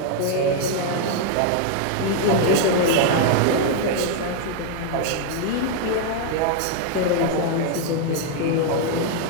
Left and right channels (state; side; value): different; both; correlation 0.00